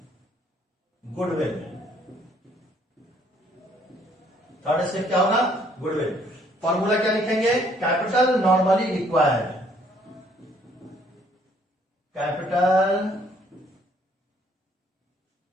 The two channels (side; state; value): both; normal; correlation 0.64